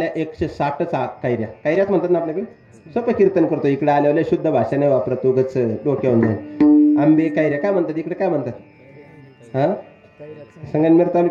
160 कैऱ्या. कैऱ्याच म्हणतात ना आपल्याकडे. सोपं कीर्तन करतो. इकडे आल्यावर शुद्ध भाषा नाही वापरत, उगच डोक्यावरून जाईल. आंबे कैऱ्या काय म्हणतात इकडे, काय म्हणतात. हा, संगमनेर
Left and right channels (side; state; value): both; identical; correlation 1.00